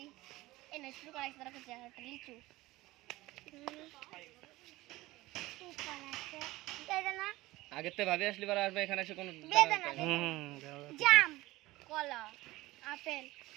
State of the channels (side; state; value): left; quieter; 18.9 dB